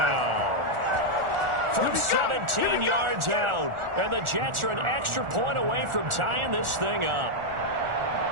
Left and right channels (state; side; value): late; left; 1.4 ms